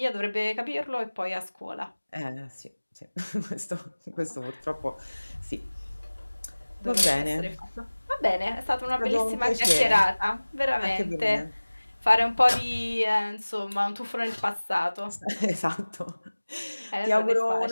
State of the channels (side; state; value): both; inverted; correlation -1.00